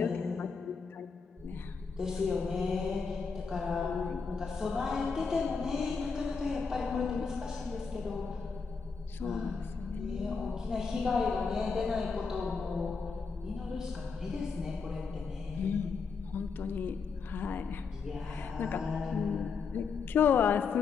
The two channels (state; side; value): quieter; right; 5.2 dB